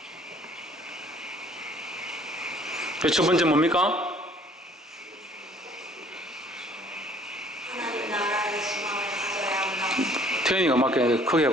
첫 번째 뭡니까? 하나님 나라의 소망을 가져야 한다. 태연이가 맞게 크게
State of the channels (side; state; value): both; normal; correlation 0.57